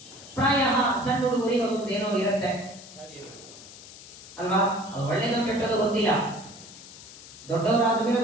ಪ್ರಾಯ ಸಣ್ಣ ಹುಡುಗರಿಗೆ ಒಂದೇನೋ ಇರುತ್ತೆ ಅಲ್ವಾ, ಅದು ಒಳ್ಳೆಯದು ಕೆಟ್ಟದ್ದು ಗೊತ್ತಿಲ್ಲ. ದೊಡ್ಡವರಾದ ಮೇಲೆ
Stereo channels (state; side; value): noise; left; hiss, 17 dB below the sound